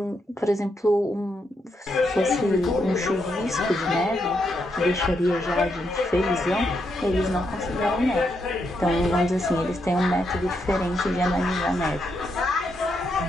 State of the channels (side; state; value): both; normal; correlation 0.80